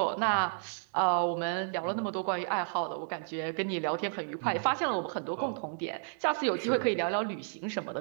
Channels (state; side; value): silent; left; digital silence